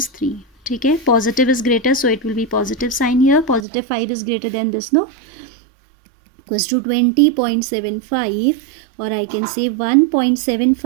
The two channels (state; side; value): drops out; left; at 3.6 s